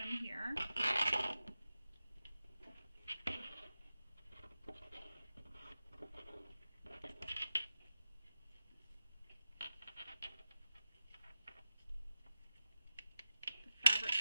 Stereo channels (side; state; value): both; inverted; correlation -0.92